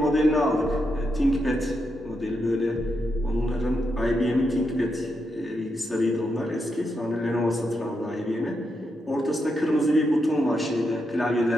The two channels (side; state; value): both; normal; correlation 0.83